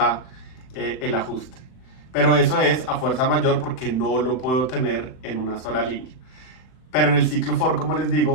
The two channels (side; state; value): right; late; 39 ms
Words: el ajuste. Pero eso es a fuerza mayor porque no lo puedo tener en una sola línea. Pero en el ciclo for, como les